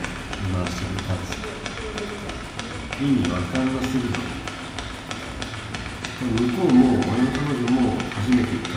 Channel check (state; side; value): identical; both; correlation 1.00